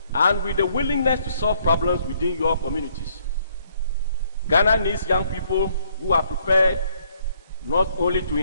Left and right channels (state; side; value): inverted; both; correlation -0.68